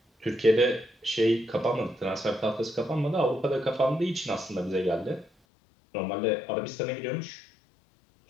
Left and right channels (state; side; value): drops out; right; at 5.3 s